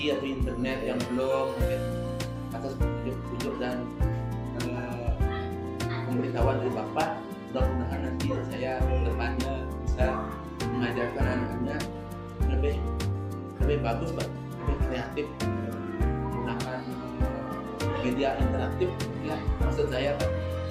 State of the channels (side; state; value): both; identical; correlation 1.00